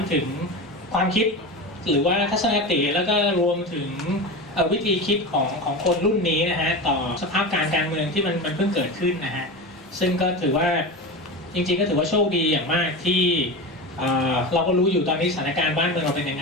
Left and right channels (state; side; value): normal; both; correlation 0.25